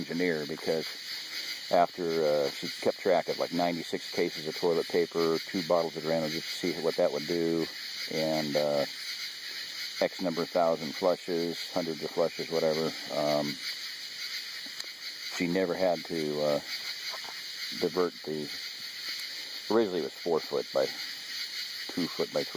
because after she kept track of like 96 cases of toilet paper, 2 bottles of Drano, just to see what that would do, and X number of thousand flushes, hundreds of flushes, whatever. She never had to divert the, originally it was 4-foot by 2-foot by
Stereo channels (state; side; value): identical; both; correlation 1.00